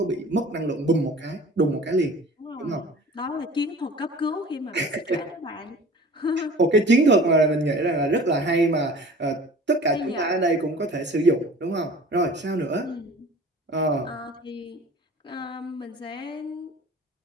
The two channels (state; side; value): normal; both; correlation 0.44